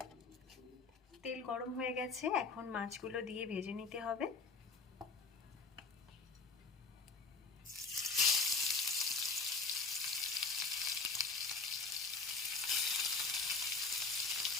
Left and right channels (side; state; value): right; quieter; 4.3 dB